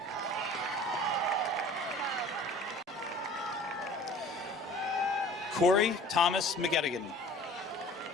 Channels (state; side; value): normal; both; correlation 0.47